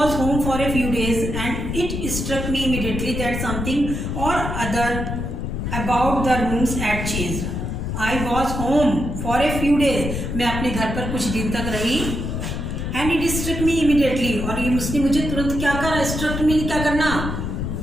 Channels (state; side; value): noise; left; rumble, 3 dB below the sound